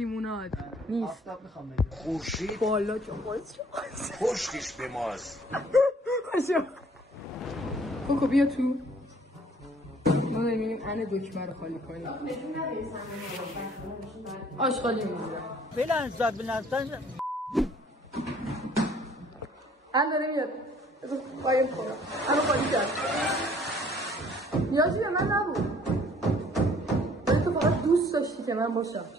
نیست. خورشید بالا جواز پشتش به ماست. کوکو بیا تو. ما داریم انه دکمه رو خالی کنیم. آشغالی میگیرم بلنزد بلنزد ان داره میاد. باید خورم انو خالی کرد. نیازی به من نبود. ولی تو فقط دوست داشتی که من باشم.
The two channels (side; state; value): both; normal; correlation 0.58